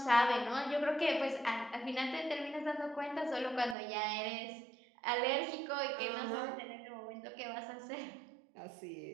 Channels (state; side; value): drops out; left; at 3.8 s